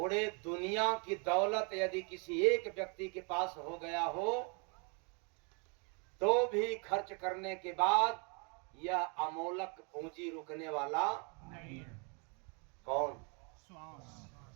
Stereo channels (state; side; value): quieter; left; 34.6 dB